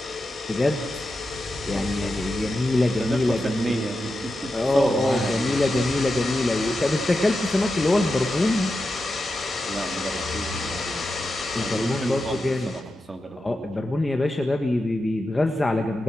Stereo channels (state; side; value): normal; both; correlation 0.90